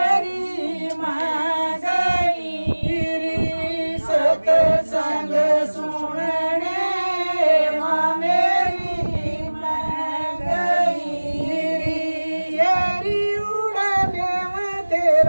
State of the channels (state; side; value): inverted; both; correlation -1.00